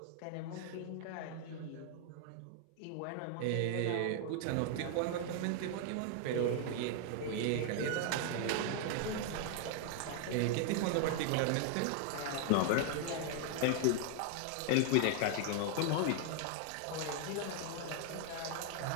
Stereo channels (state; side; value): different; both; correlation 0.00